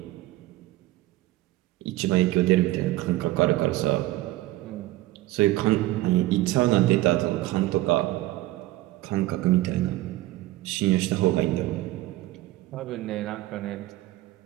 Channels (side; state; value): left; quieter; 17.0 dB